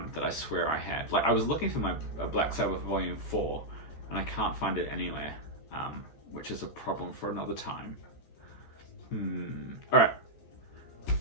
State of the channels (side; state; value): right; late; 14 ms